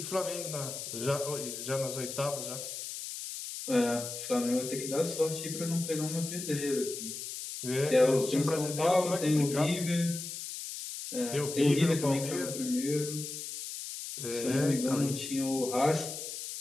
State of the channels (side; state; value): left; noise; hiss, 7 dB below the sound